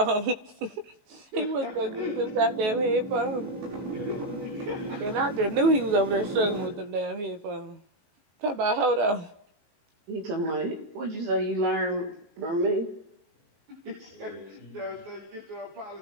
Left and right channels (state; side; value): late; left; 19 ms